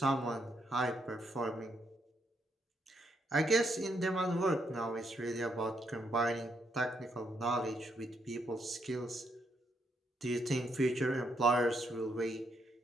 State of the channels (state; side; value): normal; both; correlation 0.77